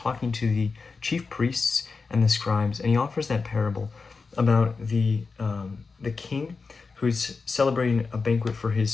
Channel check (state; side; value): quieter; right; 4.5 dB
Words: to the chief priests and the scribes, and he offers that parable about the king who's celebrating a banquet for